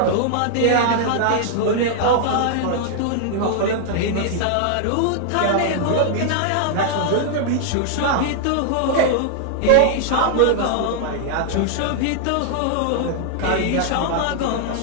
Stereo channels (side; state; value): both; different; correlation -0.01